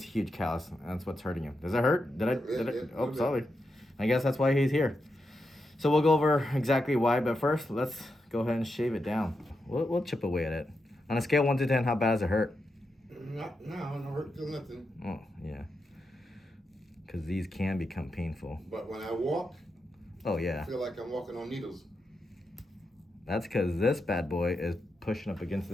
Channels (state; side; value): normal; both; correlation 0.86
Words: huge callus. That's what's hurting him. Does it hurt? Did I? Oh, sorry. I guess that's why he's here. So we'll go over exactly why, but first, let's go ahead and shave it down. We'll chip away at it. On a scale 1 to 10, how bad does it hurt? No hurt, feel nothing. Oh, yeah. Because these can become painful. But when I walk, oh yeah, I feel like I'm walking on needles. That's because this bad boy is pushing up against